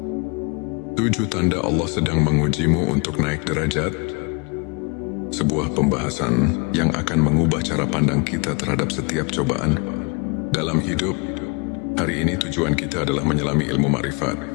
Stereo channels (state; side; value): quieter; right; 31.4 dB